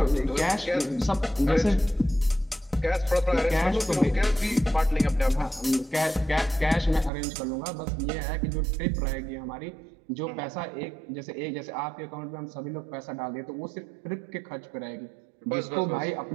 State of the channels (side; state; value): left; drops out; at 7.1 s